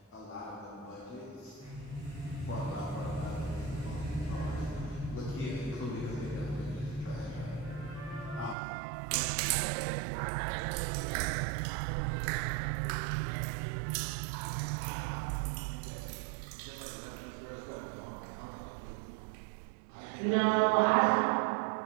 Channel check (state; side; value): drops out; left; at 8.6 s